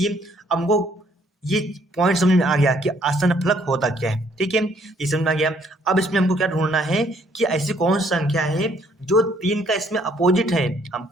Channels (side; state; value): both; normal; correlation 0.65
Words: हमको ये पॉइंट समझ में आ गया कि आसन्न फलक होता क्या है। ठीक है, ये समझ में आ गया। अब इसमें हमको क्या ढूंढना है कि ऐसी कौन सी संख्या है जो 3 का इसमें अपोजिट है।